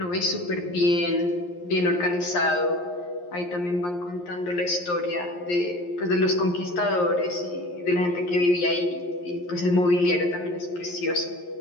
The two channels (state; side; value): late; right; 11 ms